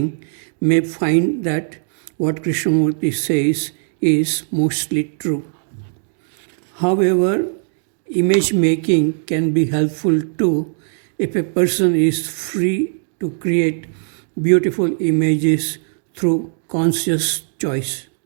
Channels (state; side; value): silent; left; digital silence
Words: may find that what Krishnamurti says is mostly true. However, image making can be helpful too if a person is free to create beautiful images through conscious choice.